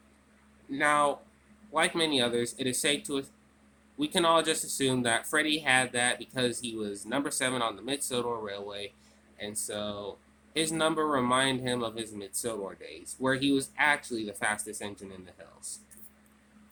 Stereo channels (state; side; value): identical; both; correlation 1.00